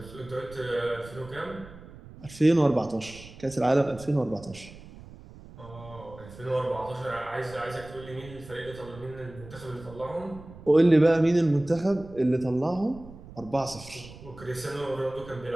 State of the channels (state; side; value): noise; right; rumble, 18 dB below the sound